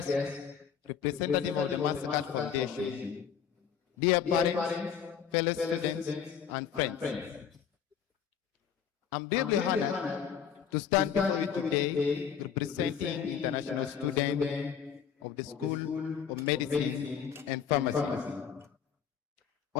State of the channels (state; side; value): quieter; right; 7.9 dB